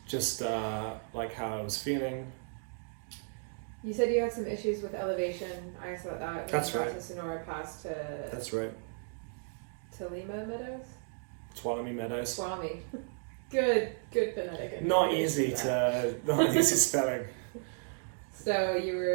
Just like how I was feeling. You said you had some issues with elevation. I asked about that. That's right. To Sonora Pass to. That's right. To Lima Meadows. Tuolumne Meadows. Tuolumne. Good phonetic. Not easy spelling. So you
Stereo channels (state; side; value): silent; left; 55 dB below the other